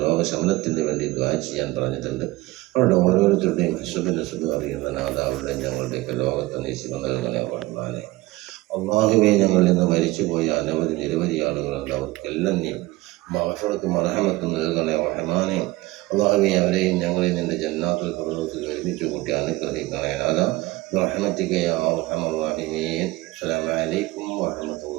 രോഗശമനത്തിന് വേണ്ടി ദുആ ചെയ്യാൻ പറഞ്ഞിട്ടുണ്ട്. അവരുടെ ഓരോരുത്തരുടെയും ഹസ്ബുൻ അറിയുന്ന നാഥ, അവരുടെ ഞങ്ങളുടെയൊക്കെ ലോകത്തെ നീ ശിവ നൽകണേ റഹ്മാനെ. അല്ലാഹുവേ, ഞങ്ങളിൽ നിന്ന് മരിച്ചുപോയ നിരവധി ആളുകളുണ്ട്. അവർക്കെല്ലാം നീ മഗ്ഫിറത്തും മർഹമത്തും നൽകണേ റഹ്മാനെ. അല്ലാഹുവേ, അവരെയും ഞങ്ങളെയും നിന്റെ ജന്നാത്തുൽ ഫിർദൗസിൽ ഒരുമിച്ച് കൂട്ടി അനുഗ്രഹിക്കണേ നാഥ. ബിറഹ്മതിക യാ അർഹമർ റഹീമീൻ. അസ്സലാമു അലൈക്കും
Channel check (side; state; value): left; quieter; 19.8 dB